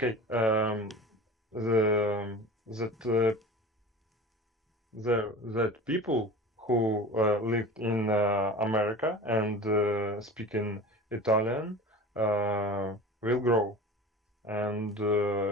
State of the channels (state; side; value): normal; both; correlation 0.35